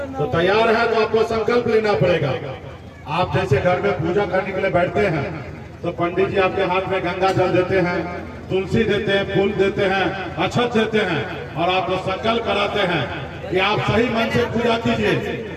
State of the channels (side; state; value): both; identical; correlation 1.00